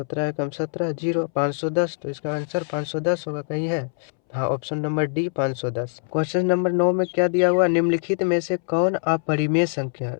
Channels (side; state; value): right; silent; 63 dB below the other